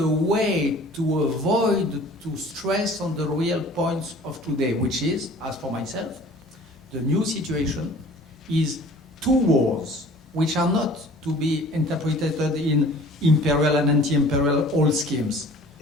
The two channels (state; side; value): normal; both; correlation 0.47